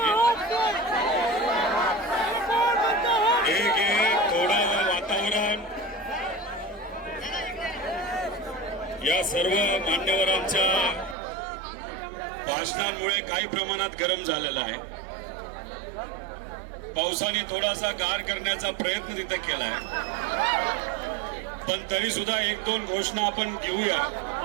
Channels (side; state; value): left; drops out; at 11.2 s